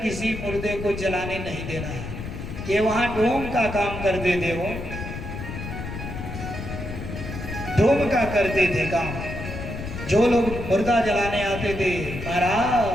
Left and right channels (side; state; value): left; noise; rumble, 8 dB below the sound